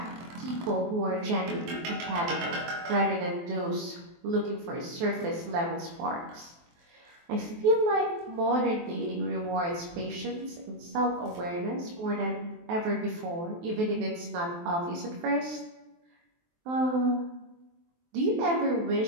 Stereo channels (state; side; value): late; left; 23 ms